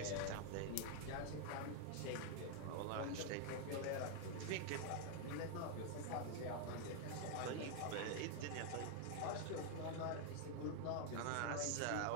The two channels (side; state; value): both; different; correlation 0.00